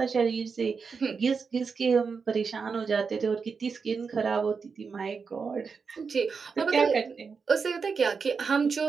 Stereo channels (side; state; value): left; quieter; 5.4 dB